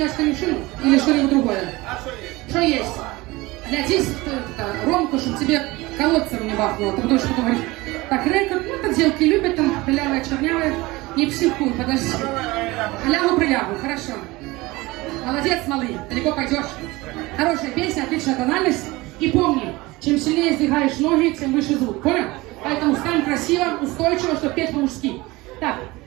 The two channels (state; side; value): quieter; left; 21.2 dB